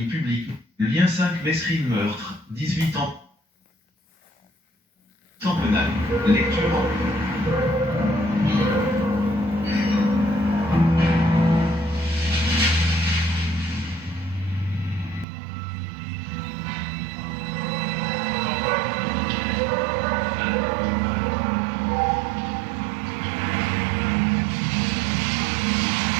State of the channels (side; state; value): left; drops out; at 15.2 s